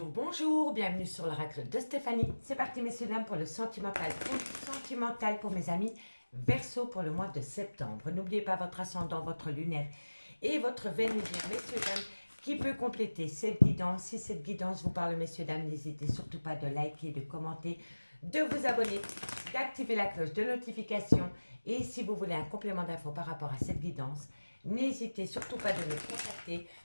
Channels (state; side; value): inverted; both; correlation -1.00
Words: bonjour, bienvenue sur l'oracle de Stéphanie. C'est parti messieurs dames pour le sentimental pour mes amis Verseau pour le mois de septembre. N'oubliez pas votre ascendant, votre lunaire et votre Vénusien, messieurs dames, qui peut compléter cette guidance. Si cette guidance vous parle messieurs dames, n'hésitez surtout pas de liker, de commenter, de vous abonner, d'activer la cloche de notification. Et si vous voulez un complément d'infos par rapport à cette guidance, n'hésitez surtout pas de me contacter.